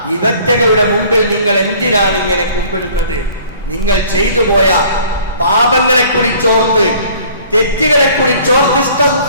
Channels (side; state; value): both; inverted; correlation -0.53